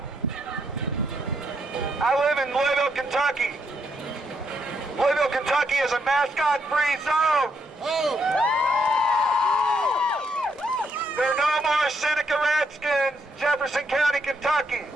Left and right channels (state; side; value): normal; both; correlation 0.77